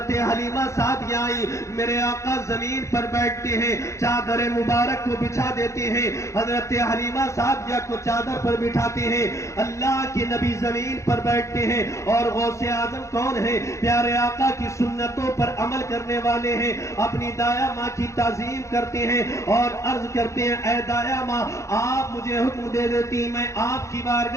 حلیمہ سعدیہ آئی، میرے آقا زمین پر بیٹھتے ہیں، چادر مبارک کو بچھا دیتے ہیں، حضرت حلیمہ سعدیہ کو چادر پر بٹھاتے ہیں، اللہ کے نبی زمین پر بیٹھتے ہیں۔ اور غوث اعظم کون ہے؟ پیارے آقا کی سنتوں پر عمل کرنے والے ہیں، اپنی دایا ماں کی تعظیم کرتے ہیں اور عرض کرتے ہیں، اے دایا ماں آپ مجھے حکم دے دیتی، میں آپ کی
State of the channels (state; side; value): late; right; 0.14 ms